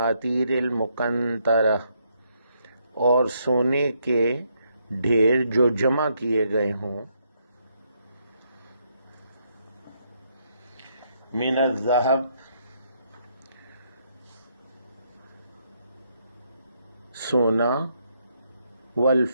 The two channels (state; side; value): inverted; both; correlation -0.75